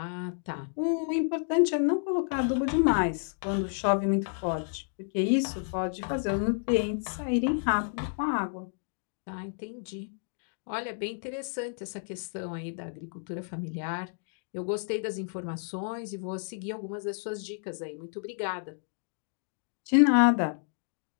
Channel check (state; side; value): silent; right; 57 dB below the other